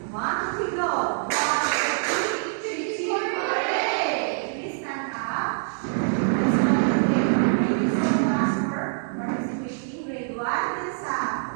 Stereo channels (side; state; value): left; silent; digital silence